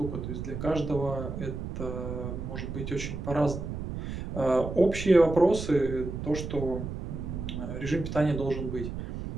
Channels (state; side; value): noise; right; rumble, 6 dB below the sound